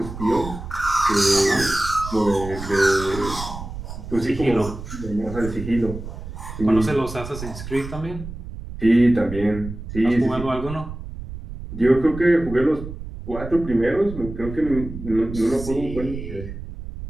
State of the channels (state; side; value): noise; right; rumble, 10 dB below the sound